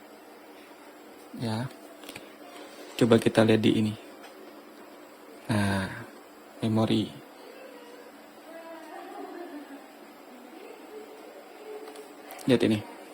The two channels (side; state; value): both; identical; correlation 1.00